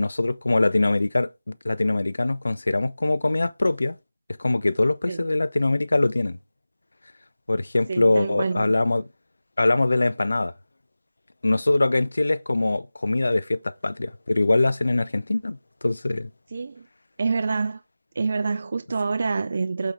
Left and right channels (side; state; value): both; inverted; correlation -0.97